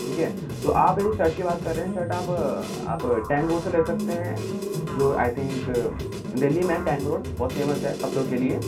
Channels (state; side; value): identical; both; correlation 1.00